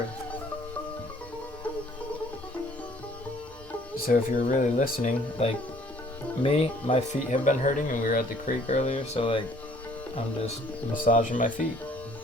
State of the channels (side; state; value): both; normal; correlation 0.58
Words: So if you're really listening, like me, my feet have been hurting and we were at the creek earlier, so like I'm just massaging my feet.